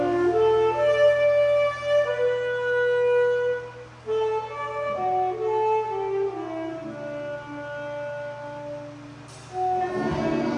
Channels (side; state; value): both; identical; correlation 1.00